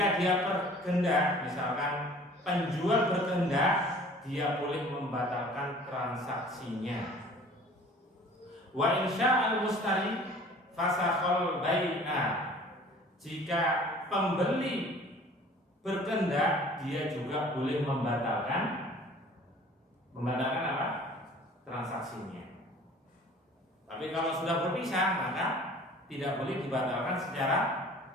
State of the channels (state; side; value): normal; both; correlation 0.48